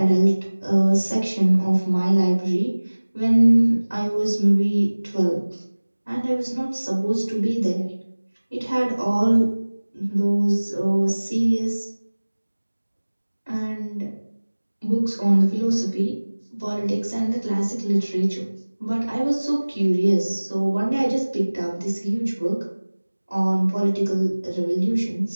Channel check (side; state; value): both; inverted; correlation -1.00